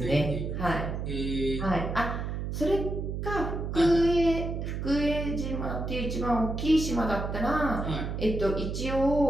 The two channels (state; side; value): noise; right; hum, 3 dB below the sound